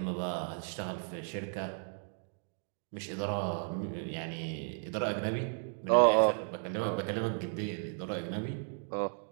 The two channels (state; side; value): silent; left; 55 dB below the other